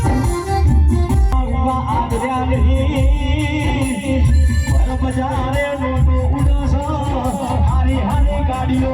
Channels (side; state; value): both; identical; correlation 1.00